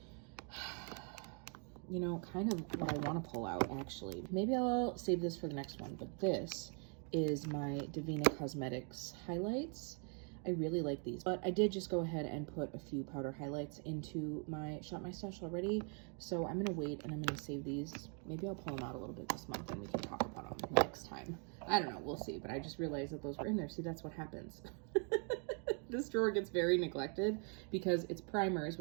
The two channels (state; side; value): quieter; left; 39.9 dB